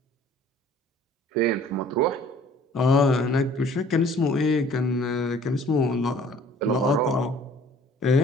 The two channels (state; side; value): normal; both; correlation 0.53